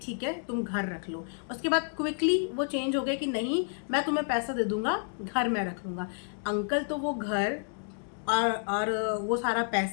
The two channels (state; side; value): silent; right; digital silence